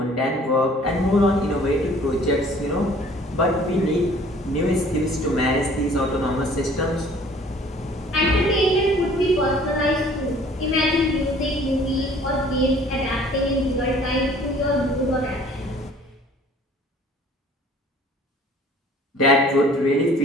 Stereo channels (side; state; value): both; normal; correlation 0.53